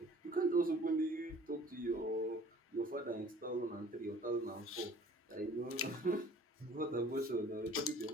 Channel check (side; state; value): both; normal; correlation 0.51